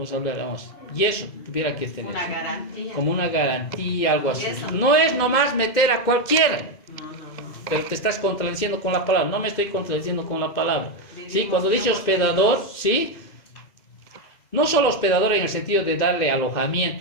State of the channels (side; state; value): right; late; 2.6 ms